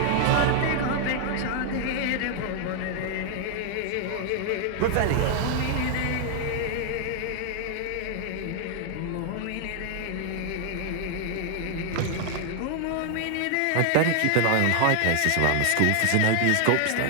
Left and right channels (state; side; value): different; both; correlation 0.00